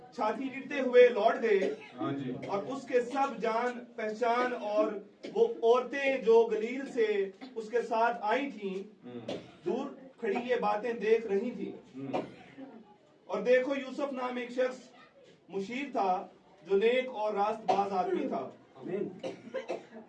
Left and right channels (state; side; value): identical; both; correlation 1.00